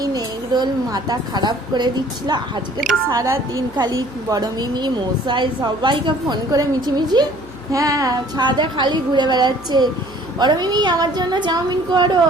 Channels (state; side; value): noise; left; hum, 19 dB below the sound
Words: এগরোল মাথা খারাপ করে দিচ্ছিল। আজকে তো সারা দিন খালি বড় মিমি মশাই সবাইকে ফোন করে মিছিমিছি, হ্যাঁ ছাদে খালি ঘুরে বেড়াচ্ছে। বড় মিমি আমার জন্য চাউমিন করো,